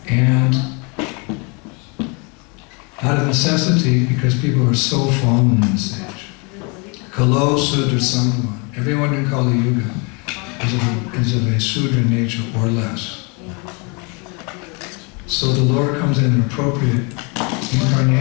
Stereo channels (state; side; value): quieter; right; 31.9 dB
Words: And out of necessity, because people are so fallen in this age, Kalo Sudra Sangama, everyone in Kali Yuga is of a Sudra nature or less. So the Lord comes in an appropriate